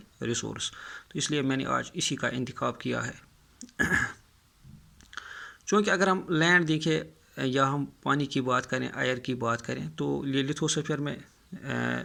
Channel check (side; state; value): both; identical; correlation 1.00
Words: ریسورس. تو اس لیے میں نے آج اسی کا انتخاب کیا ہے. چونکہ اگر ہم لینڈ دیکھیں یا ہم پانی کی بات کریں، ایئر کی بات کریں، تو یہ لتھوسفیئر میں